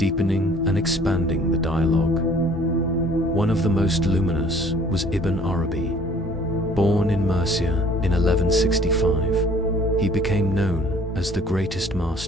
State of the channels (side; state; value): both; normal; correlation 0.54